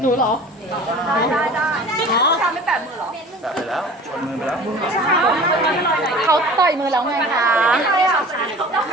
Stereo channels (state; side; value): normal; both; correlation 0.42